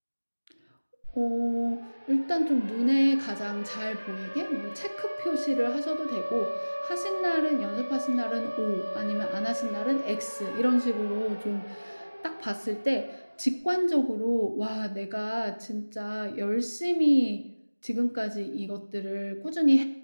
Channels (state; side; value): inverted; both; correlation -1.00